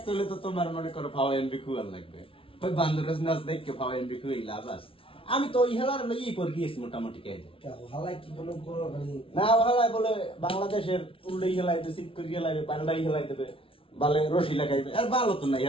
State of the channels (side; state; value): right; late; 0.26 ms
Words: হলে তো তোমার মনে করো ফাও এমবি খুয়াল লাগবে। ওই বান্দরের নাচ দেখকে ফাও এমবি খুই লাভ আছে। আমি তো ওই হেলার লইয়াই পর গিয়েছি মোটামুটি কে হালাই কি কোনো কোনো মানে না হালাই বলে বাংলাদেশের উল্লেই হেলাই দেবে, সিট করে হেলাইবে, পাল্টাই হেলাই দেবে, বালে রশি লাগাইবে। আর ভালো তো নাই,